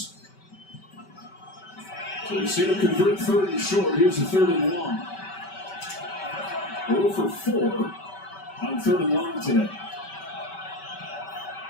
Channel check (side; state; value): right; late; 5.2 ms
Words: So we see them convert third and short. Here's a third and long. 0 for 4 on third and long today.